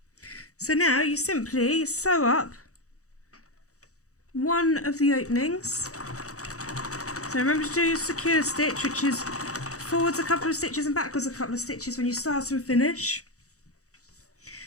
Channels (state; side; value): late; right; 0.65 ms